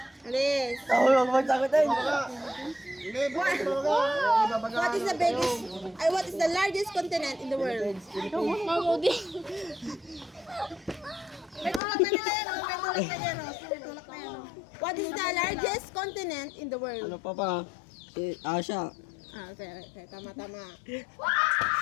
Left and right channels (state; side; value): drops out; right; at 11.8 s